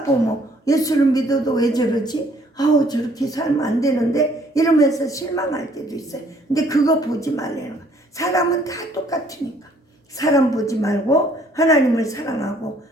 보면 예수를 믿어도 왜 저러지? 저렇게 살면 안 되는데 이러면서 실망할 때도 있어요. 근데 그거 보지 말라는 거야. 사람은 다 똑같으니까 사람 보지 말고 하나님을 사랑하고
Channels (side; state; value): both; normal; correlation 0.62